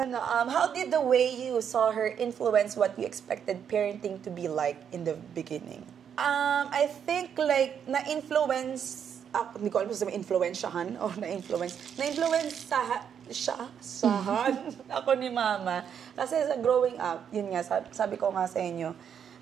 did the way you saw her influence what you expected parenting to be like in the beginning? I think like na-influence hindi ko alam kung influensyahan o na-influence sahan ako ni mama. Kasi sa growing up, yun nga, sabi ko nga sa inyo,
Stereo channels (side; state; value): left; quieter; 8.1 dB